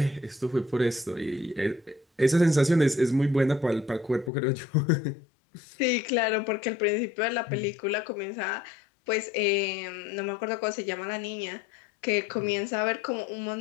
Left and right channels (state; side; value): drops out; right; at 4.3 s